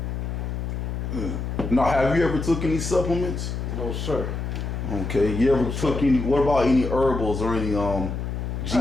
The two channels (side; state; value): left; noise; hum, 4 dB below the sound